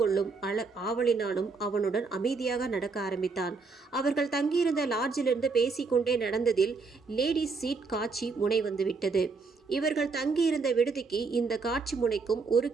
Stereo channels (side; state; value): left; quieter; 4.4 dB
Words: ஆவலினாலும் அவனுடன் அமைதியாக நடக்க ஆரம்பித்தான். அவர்கள் தங்கியிருந்த லாட்ஜிலிருந்து பேசிக்கொண்டே நடந்ததில் லேடிஸ் சீட் காட்சி முனை வந்துவிட்டது. இவர்கள் தங்கியிருந்த விடுதிக்கு இந்த காட்சி முனைக்கும் 1